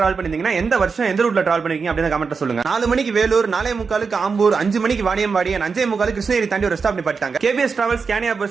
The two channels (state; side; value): quieter; left; 5.1 dB